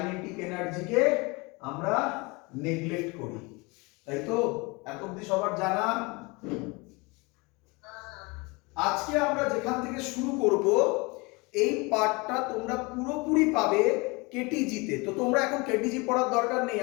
এনার্জিকে আমরা নেগলেক্ট করি, তাই তো? এত অবধি সবার জানা? আজকে আমরা যেখান থেকে শুরু করব এই পার্টটা তোমরা পুরোপুরি পাবে কেটিজিতে। তো তোমরা এখন কেটিজি পড়ার দরকার নেই,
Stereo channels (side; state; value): right; quieter; 26.7 dB